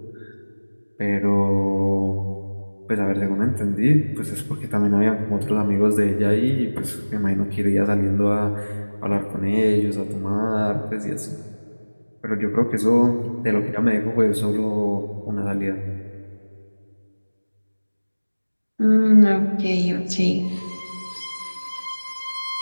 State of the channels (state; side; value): inverted; both; correlation -1.00